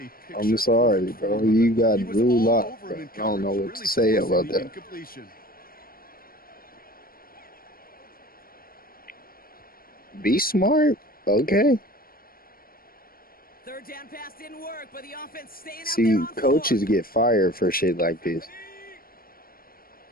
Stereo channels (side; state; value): right; late; 0.43 ms